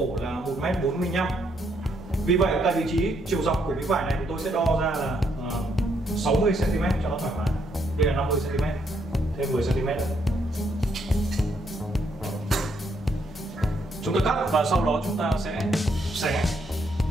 là 1m45. Vì vậy tại vị trí chiều dọc của miếng vải này thì tôi sẽ đo ra là 60 cm cho nó thoải mái. Đây là 50 cm, thêm 10 cm nữa. Chúng ta cắt và sau đó chúng ta sẽ xé.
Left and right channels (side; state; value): both; normal; correlation 0.74